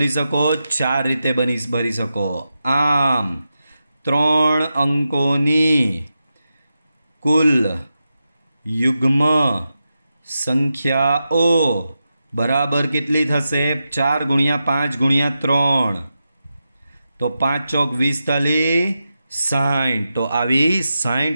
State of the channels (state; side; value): inverted; both; correlation -0.89